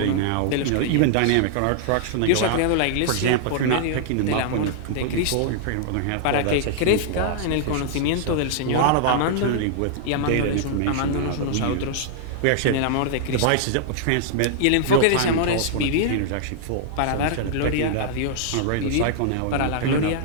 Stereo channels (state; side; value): different; both; correlation -0.01